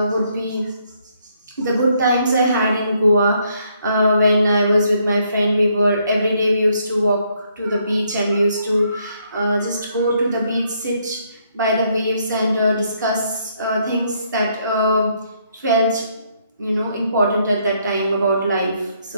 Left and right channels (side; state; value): both; inverted; correlation -0.71